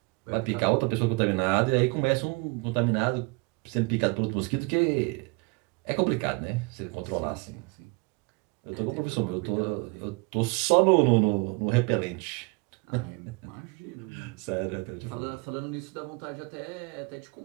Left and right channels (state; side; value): quieter; left; 28.5 dB